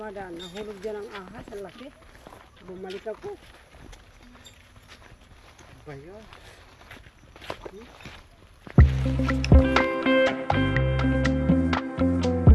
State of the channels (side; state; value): both; identical; correlation 1.00